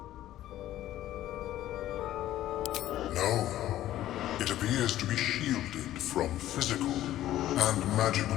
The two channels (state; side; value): quieter; right; 13.5 dB